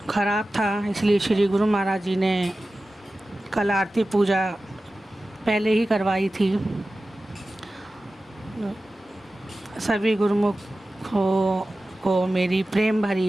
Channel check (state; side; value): normal; both; correlation 0.95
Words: खराब था, इसलिए श्री गुरु महाराज जी ने कल आरती पूजा पहले ही करवाई थी। सभी गुरुमुखों को मेरी प्रेम